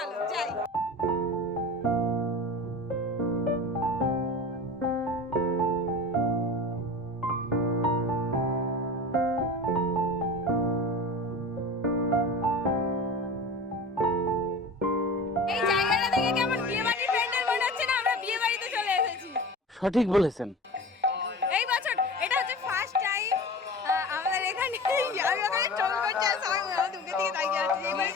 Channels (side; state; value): both; normal; correlation 0.34